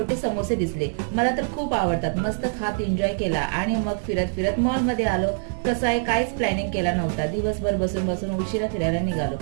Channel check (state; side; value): silent; left; digital silence